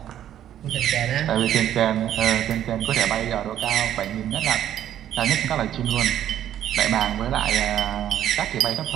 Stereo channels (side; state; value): left; quieter; 11.1 dB